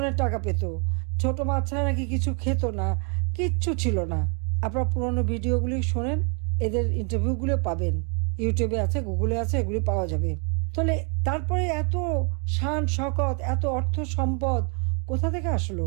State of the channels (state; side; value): quieter; left; 36.5 dB